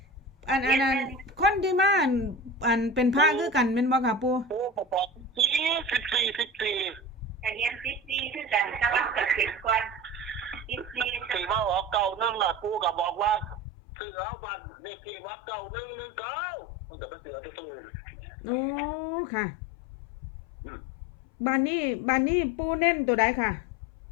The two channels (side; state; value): right; drops out; at 13.6 s